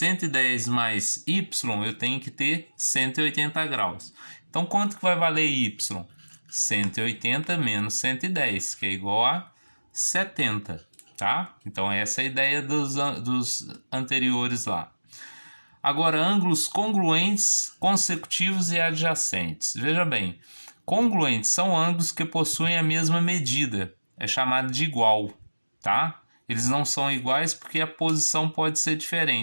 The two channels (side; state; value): both; inverted; correlation -1.00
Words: mais y, eu tenho que ter 180 graus. Então quanto que vai valer y? 180 menos 110, que é igual a 70, tá? Então essa é a ideia dos anteriores lá. Agora, ângulos congruentes, consecutivos e adjacentes. Veja bem, congruentes são ângulos que possuem a mesma medida, é chamado de igual, tá? Eles não são iguais porque a posição pode ser